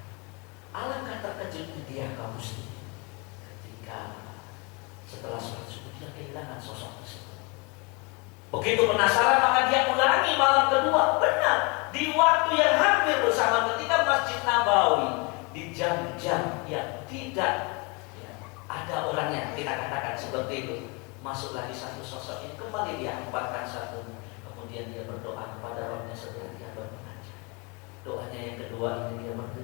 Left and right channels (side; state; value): right; quieter; 30.3 dB